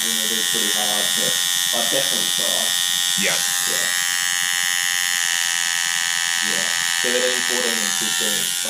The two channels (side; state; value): both; identical; correlation 1.00